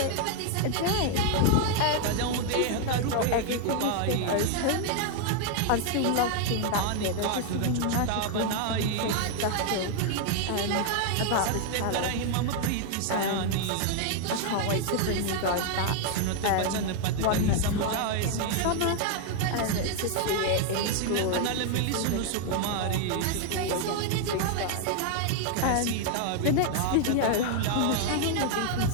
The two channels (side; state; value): both; different; correlation 0.00